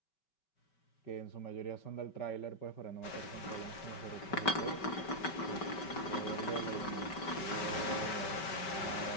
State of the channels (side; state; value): right; late; 5.2 ms